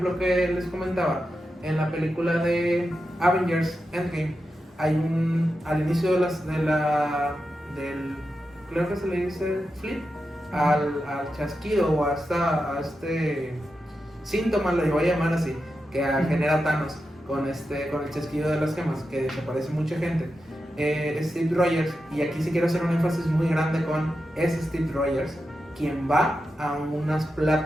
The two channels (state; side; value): normal; both; correlation 0.89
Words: que les comentaba, en la película de Avengers Endgame, hay al inicio del creo que se le dice flip, al chasquido o a este síntoma, lo voy a llamar así, que genera Thanos con el chasquido de las gemas, que desaparece mucha gente. Steve Rogers, y aquí sí quiero hacer un énfasis muy grande con Steve Rogers, quien va a unas